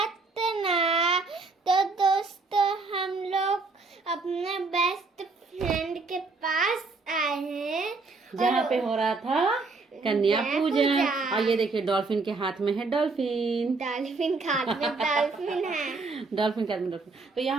तो दोस्तों हम लोग अपने बेस्ट फ्रेंड के पास आए हैं जहाँ पे हो रहा था कन्या पूजन। और ये देखिए डॉल्फिन के हाथ में है डॉल्फिन। डॉल्फिन हाथ में डॉल्फिन है। डॉल्फिन के हाथ में डॉल्फिन। तो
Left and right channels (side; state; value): left; quieter; 3.9 dB